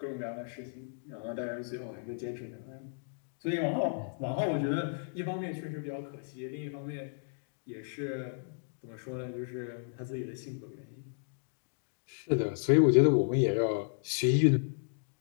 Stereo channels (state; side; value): silent; right; digital silence